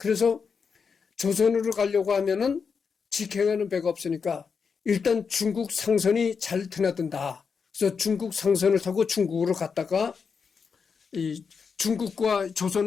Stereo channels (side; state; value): right; quieter; 5.8 dB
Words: 조선으로 가려고 하면은 직행하는 배가 없으니까 일단 중국 상선이 잘 드나든다. 그래서 중국 상선을 타고 중국으로 갔다가 이 중국과